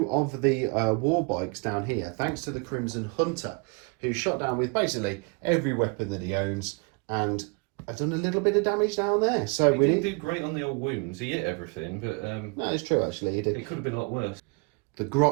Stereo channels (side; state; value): left; quieter; 33.0 dB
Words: of the war bikes down here, thanks to the Crimson Hunter, who shot down with basically every weapon that he owns, and I've done a little bit of damage down there. So he didn't do great on the old wounds. He hit everything, but no, it's true actually. He did. It could have been a lot worse. The